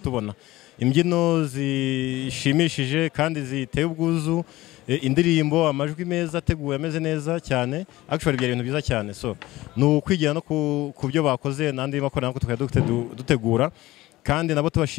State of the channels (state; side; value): quieter; right; 17.9 dB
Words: imbyino zishimishije kandi ziteye ubwuzu, indirimbo, amajwi meza ateguwe ameze neza cyane. Actually byari ibintu byiza cyane. So ni ukwigira no ku byo bakoze n'andi makorali nako tukajya dutegura, kandi nabo